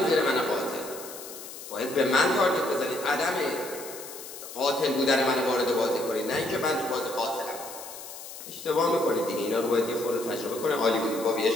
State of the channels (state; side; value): noise; left; hiss, 13 dB below the sound